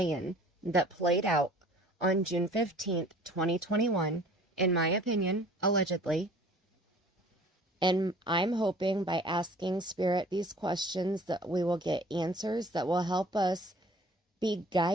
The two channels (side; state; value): both; normal; correlation 0.50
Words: that played out on June 15th, 2021, in my opinion, allegedly. And I'm hoping by asking Spirit these questions that we will get answers that will help us be